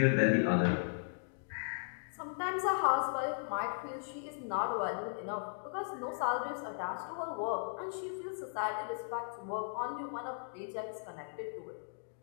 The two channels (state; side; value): silent; right; digital silence